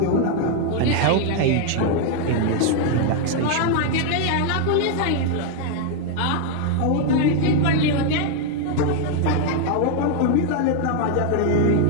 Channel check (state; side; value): different; both; correlation 0.00